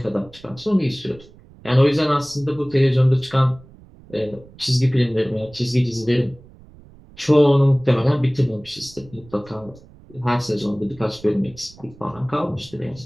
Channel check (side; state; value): right; noise; rumble, 23 dB below the sound